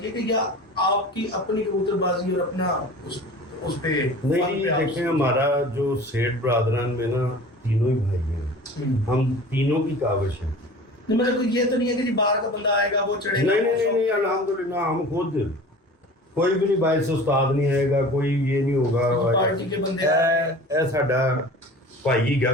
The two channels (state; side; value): normal; both; correlation 0.40